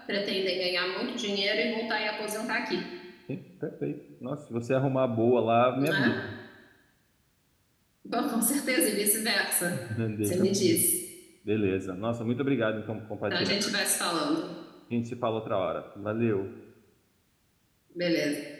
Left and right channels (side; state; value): both; identical; correlation 1.00